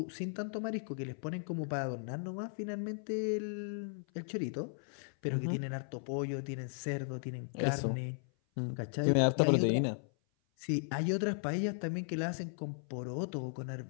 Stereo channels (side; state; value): right; silent; 54 dB below the other